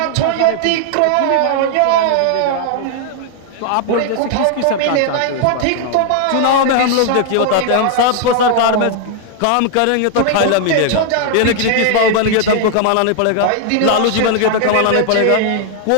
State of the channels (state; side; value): different; both; correlation 0.00